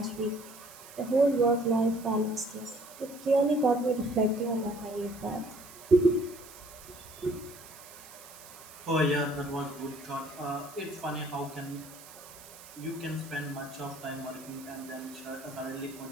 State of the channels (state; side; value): noise; right; hiss, 18 dB below the sound